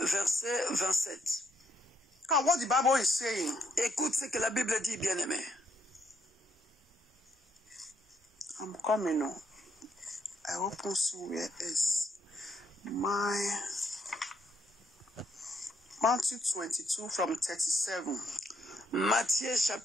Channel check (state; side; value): normal; both; correlation 0.74